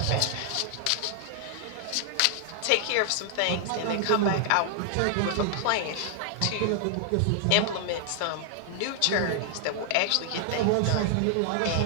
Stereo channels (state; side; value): different; both; correlation 0.00